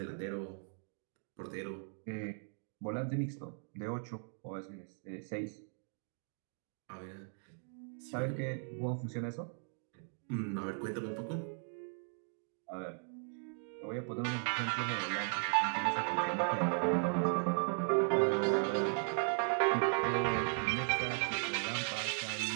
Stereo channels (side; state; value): left; silent; 53 dB below the other